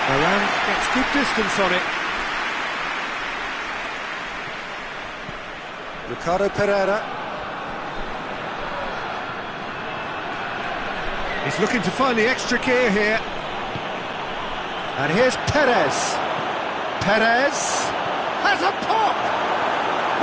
Varane gets good distance on it. Ricardo Pereira. He's looking to find the extra gear here. And here's Perez. Perez has a pop!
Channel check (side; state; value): both; identical; correlation 1.00